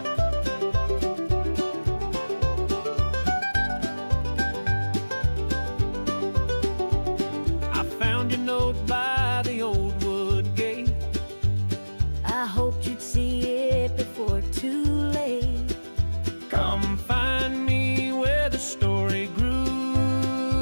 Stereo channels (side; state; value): both; inverted; correlation -1.00